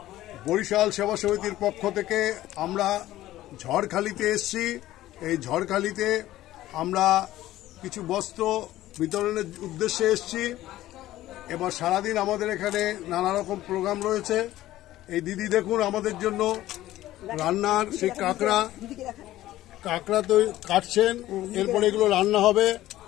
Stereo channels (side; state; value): right; quieter; 15.0 dB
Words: বরিশাল সেবা সমিতির পক্ষ থেকে আমরা ঝড়খালিতে এসেছি। এই ঝড়খালিতে আমরা কিছু বস্ত্র বিতরণের উদ্দেশ্যে এসেছি। এবার সারাদিন আমাদের এখানে নানা রকম প্রোগ্রাম রয়েছে। এই দিদি দেখুন আমাদের জন্য রান্নার সেই কাঁকড়া তো কাটছেন, এরপরে এগুলো রান্না হবে।